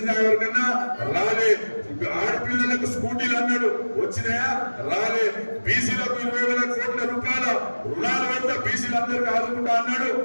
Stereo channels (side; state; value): both; inverted; correlation -1.00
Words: ఎవరికన్నా? రాలే. ఆడపిల్లలకు స్కూటీలు అన్నాడు, వచ్చినాయా? రాలే. బీసీలకు 20,000 కోట్ల రూపాయల రుణాలు పెడతా బీసీలు అందరికీ ఆదుకుంటా అన్నాడు,